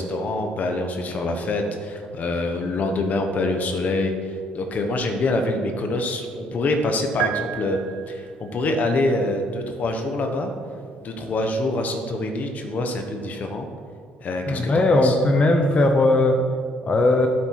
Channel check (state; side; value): normal; both; correlation 0.69